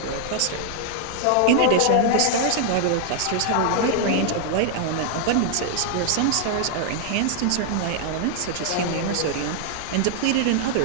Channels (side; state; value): both; different; correlation 0.00